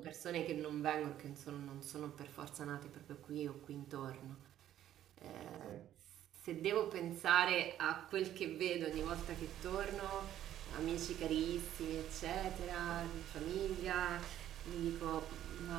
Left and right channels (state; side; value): quieter; left; 11.8 dB